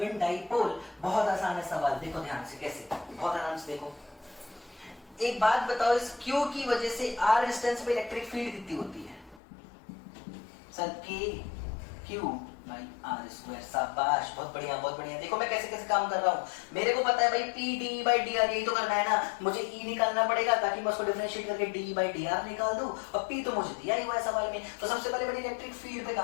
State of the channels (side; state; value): right; drops out; at 9.4 s